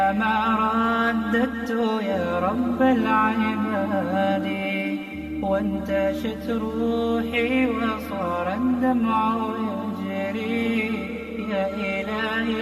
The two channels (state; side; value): identical; both; correlation 1.00